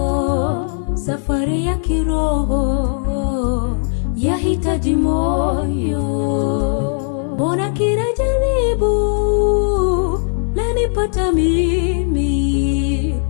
safari ya kiroho yahitaji moyo. Mbona kila jaribu lanipata mimi,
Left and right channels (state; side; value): silent; right; 67 dB below the other